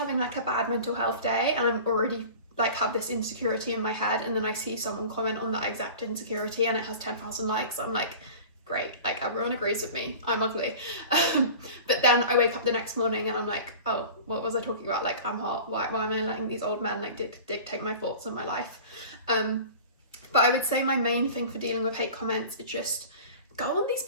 like a bad mental health day and I'm already like have this insecurity in my head, and then I see someone comment on that exact insecurity and it has 10,000 likes. I'm like, great, like everyone agrees with me, I'm ugly. But then I wake up the next morning and I'm like, oh, what was I talking about? Like, I'm hot, why am I letting these old men like dictate my thoughts on my life? But I would say my main thing for dealing with hate comments is just go on these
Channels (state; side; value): inverted; both; correlation -0.39